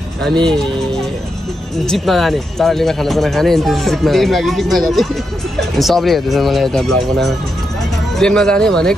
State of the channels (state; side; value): normal; both; correlation 0.84